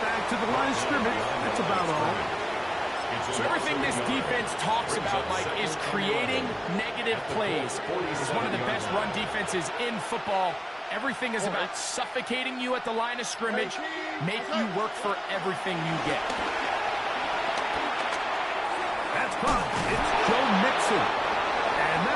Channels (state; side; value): identical; both; correlation 1.00